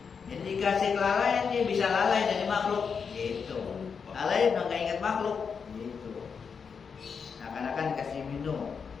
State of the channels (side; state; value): right; quieter; 6.0 dB